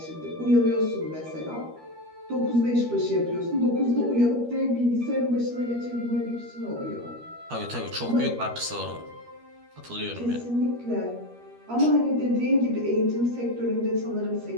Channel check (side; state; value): left; late; 13 ms